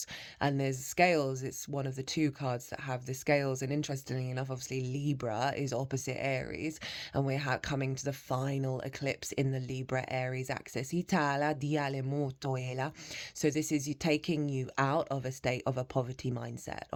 And there's scales, it's one of the two cards that have the scales. And interestingly enough, obviously Libra is opposite Aries, and we're coming to the final eclipse in the Libra Aries axis. So this is you taking you out of a state of a poverty mindset,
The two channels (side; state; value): both; identical; correlation 1.00